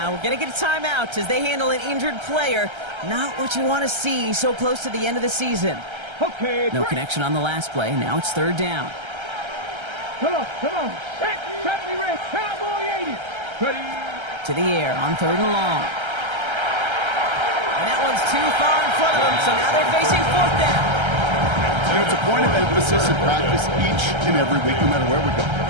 We're going to get a timeout as they handle an injured player. Not what you want to see so close to the end of the season. Okay. No connection on the last play. Now it's third down. Come on. Set me ready. Cowboy 80. Ready. To the air on third and long. And that one's too far in front of them, so now they're facing fourth down. You know, it's a point of emphasis in practice each and every week, no matter where we go.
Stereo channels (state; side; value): late; left; 1.3 ms